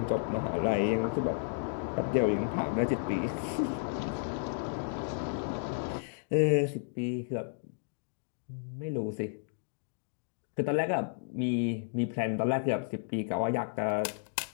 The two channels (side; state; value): right; silent; digital silence